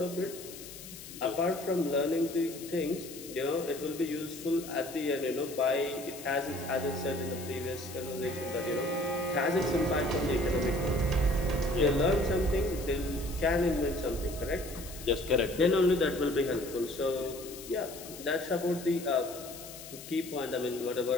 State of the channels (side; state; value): left; noise; hiss, 14 dB below the sound